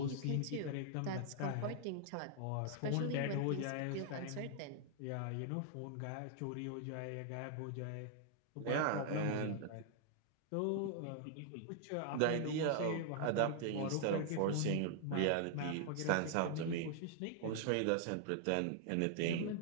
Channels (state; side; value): different; both; correlation 0.00